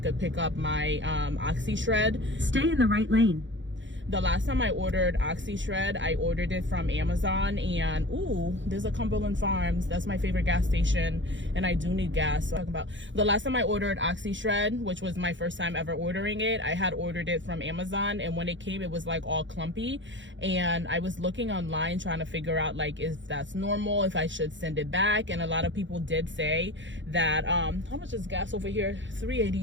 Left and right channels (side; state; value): left; late; 0.54 ms